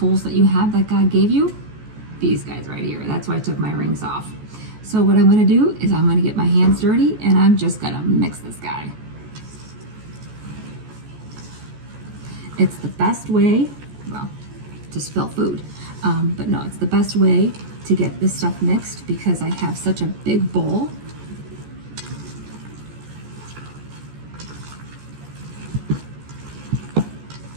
that you have that God gave you, these guys right here. That's why I took my rings off. So what I'm going to do is I'm going to get my hands dirty and I'm just going to mix this guy. It's the best way, well, to spill food, but no, it's the best way to get this stuff mixed because I have such a big bowl.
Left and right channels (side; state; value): left; late; 14 ms